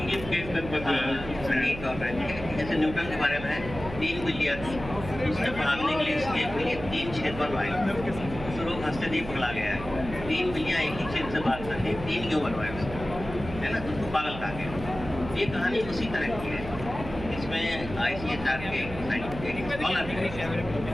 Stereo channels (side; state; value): right; noise; hum, 10 dB below the sound